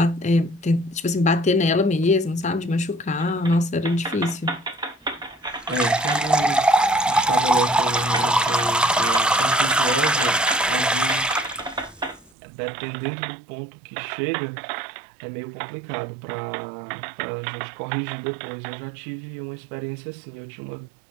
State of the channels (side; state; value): left; drops out; at 12.3 s